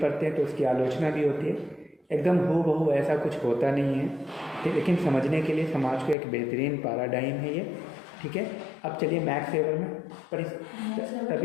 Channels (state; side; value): drops out; right; at 6.2 s